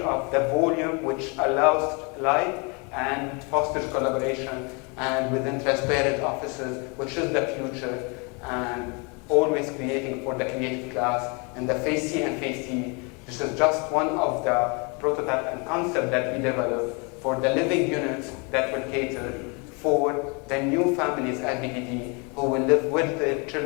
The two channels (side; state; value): right; quieter; 32.2 dB